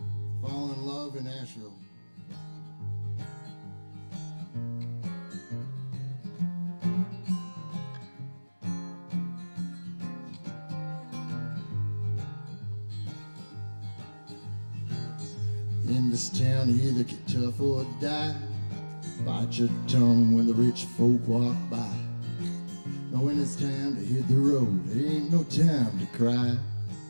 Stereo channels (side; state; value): both; inverted; correlation -1.00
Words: falling in love in Nashville. In this town, you either get tough or die. Bite your tongue when the rich folk walk by. Now when it's time to hit the road, there ain't no time to cry.